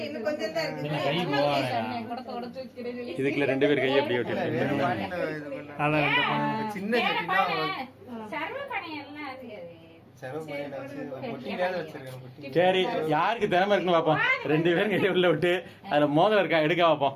இன்னும் கொஞ்சம் தான் இருக்கு. இதுக்குள்ள 2 பேர் கையை அப்படியே வேற விட்டு பானையில இது பண்ண சின்ன சட்டினா சர்வ பணையெல்லாம் அது செலவு பண்ணிட்டு வச்சு பொட்டி மேல வச்சிருக்கேன் பொட்டி. சரி, யாருக்கு திறமை இருக்குன்னு பார்ப்போம். 2 பேரும் கையை உள்ள விட்டு அதுல மோதிரம் இருக்கா எடுக்க பார்ப்போம்.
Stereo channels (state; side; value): identical; both; correlation 1.00